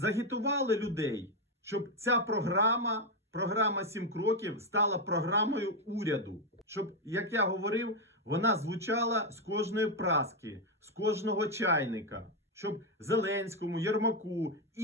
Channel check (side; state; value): both; normal; correlation 0.05